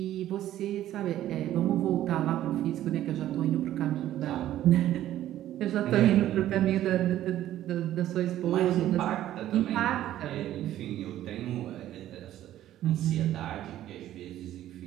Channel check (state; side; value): quieter; left; 12.9 dB